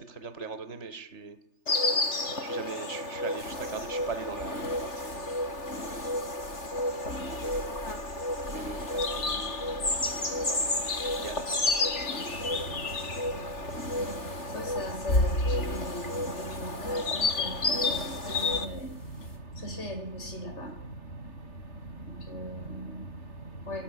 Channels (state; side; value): late; right; 3.3 ms